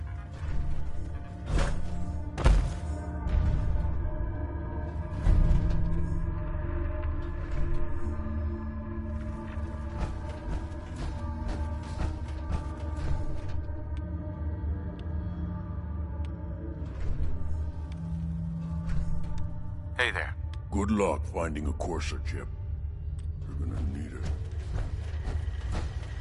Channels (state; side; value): identical; both; correlation 1.00